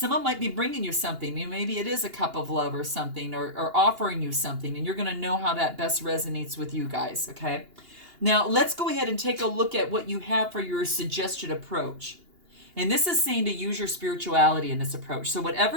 might be bringing you something. Maybe it is a cup of love or something, or offering you something, and you're going to know how that best resonates with you guys, okay? Now, let's go ahead and take a look at what you have for your suggested approach. And this is saying to use your spirituality in this approach. So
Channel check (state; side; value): late; left; 2.8 ms